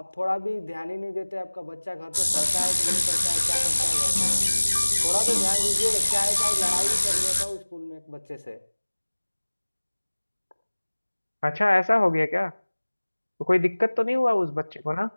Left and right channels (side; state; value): both; inverted; correlation -1.00